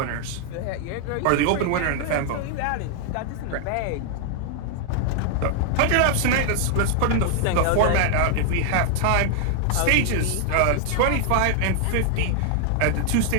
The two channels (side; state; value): both; different; correlation 0.00